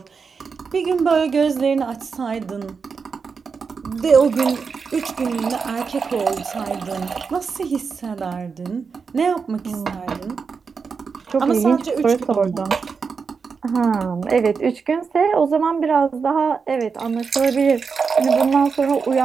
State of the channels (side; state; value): left; quieter; 5.4 dB